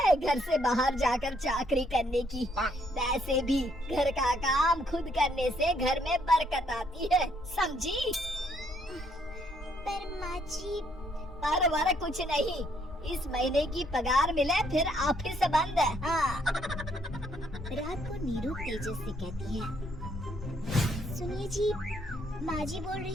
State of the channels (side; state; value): both; normal; correlation 0.69